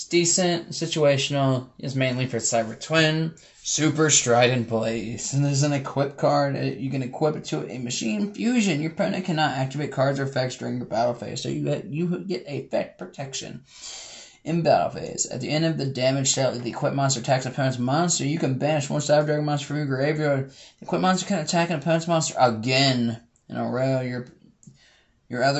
decent, situational. It's mainly for Cyber Twin. Super Strident Blaze. And there's an equip card. You can equip it to a machine fusion. Your opponent cannot activate cards or effects during your battle phase, so you get effect protection. In battle phase, at the end of the damage dealt, the equipped monster attacks an opponent's monster. You can banish 1 Cyber Dragon monster from your graveyard. The equipped monster can attack an opponent's monster again in a row. Your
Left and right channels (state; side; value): identical; both; correlation 1.00